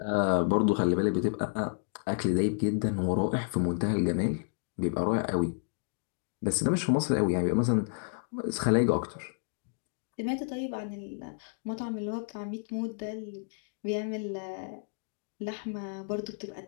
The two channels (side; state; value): right; silent; digital silence